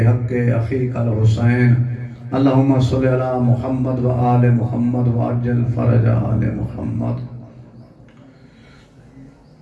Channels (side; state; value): both; identical; correlation 1.00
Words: أخيك الحسين. اللهم صل على محمد وآل محمد وعجل فرج آل محمد.